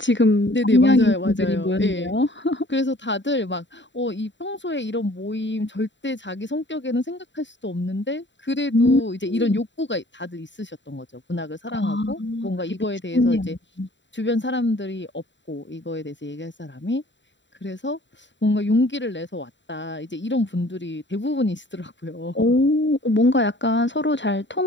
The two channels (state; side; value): late; right; 0.53 ms